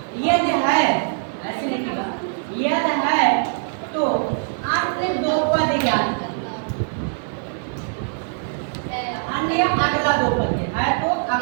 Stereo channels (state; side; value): silent; left; digital silence